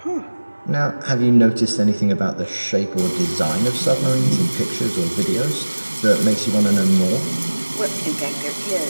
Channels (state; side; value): inverted; both; correlation -1.00